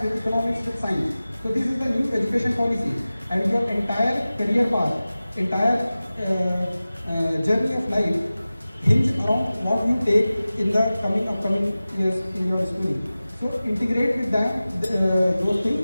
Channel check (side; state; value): both; inverted; correlation -0.96